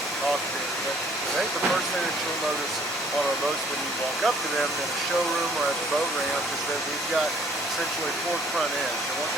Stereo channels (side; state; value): both; normal; correlation 0.59